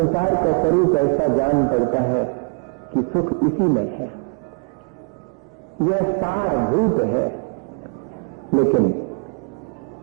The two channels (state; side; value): quieter; left; 36.7 dB